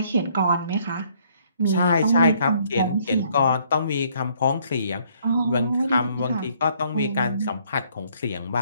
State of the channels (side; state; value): both; inverted; correlation -0.65